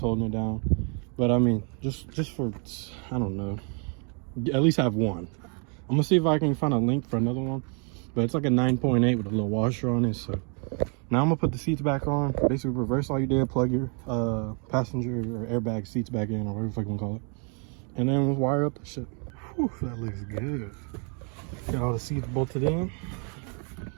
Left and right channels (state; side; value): quieter; left; 38.0 dB